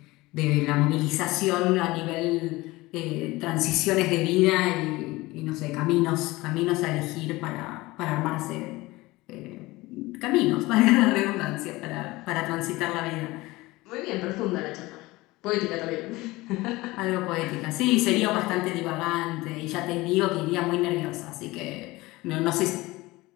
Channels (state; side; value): quieter; right; 20.4 dB